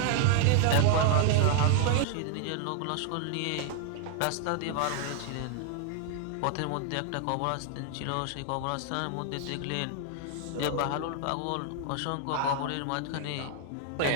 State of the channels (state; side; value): different; both; correlation 0.00